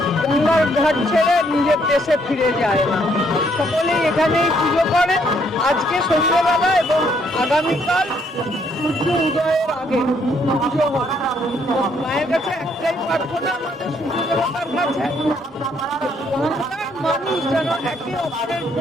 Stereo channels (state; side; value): normal; both; correlation 0.70